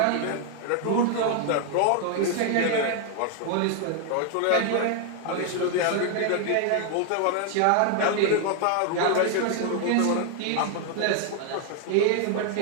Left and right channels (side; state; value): both; different; correlation 0.00